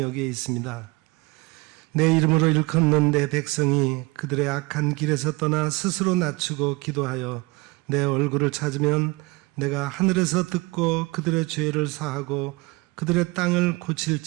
있습니다. 내 이름으로 일컫는 내 백성이 그들의 악한 길에서 떠나 스스로 낮추고 기도하여 내 얼굴을 찾으면 내가 하늘에서 듣고 그들의 죄를 사하고 그들의 땅을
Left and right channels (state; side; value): quieter; left; 25.0 dB